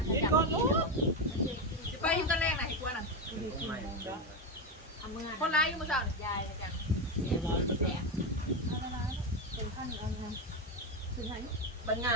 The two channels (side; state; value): both; normal; correlation 0.12